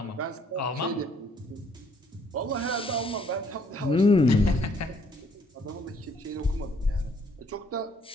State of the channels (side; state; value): both; normal; correlation 0.65